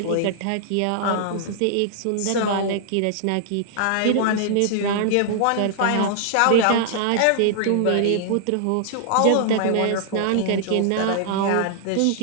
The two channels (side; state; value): both; different; correlation -0.01